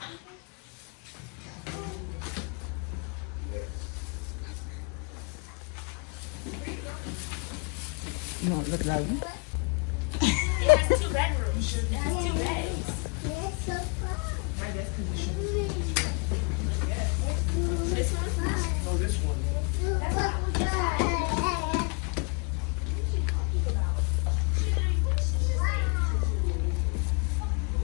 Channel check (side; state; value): right; quieter; 33.4 dB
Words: know what it looks like? It has 2 bedrooms. It has 2 beds. I guess because it should be. This one? No, this one.